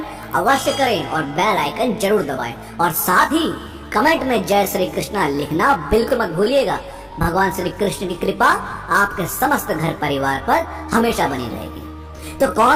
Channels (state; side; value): identical; both; correlation 1.00